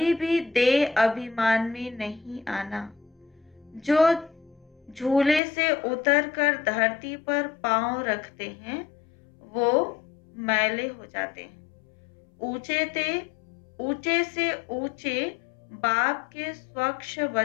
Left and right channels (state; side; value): drops out; right; at 5.4 s